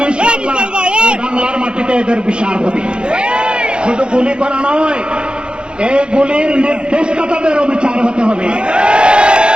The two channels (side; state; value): left; late; 0.053 ms